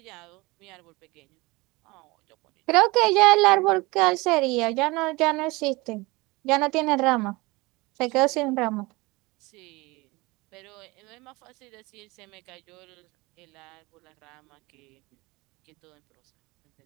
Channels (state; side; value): quieter; left; 23.4 dB